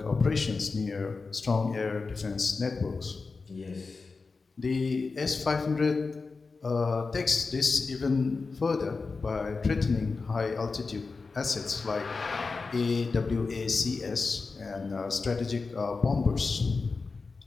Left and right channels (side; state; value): right; quieter; 4.3 dB